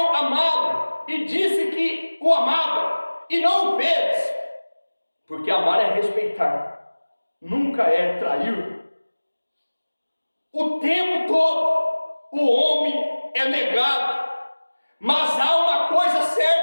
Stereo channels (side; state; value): both; inverted; correlation -1.00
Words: amá-lo e disse que o amava, e não o fez, porque amar é respeitar, nunca é trair. O tempo todo o homem é negado, mas há uma coisa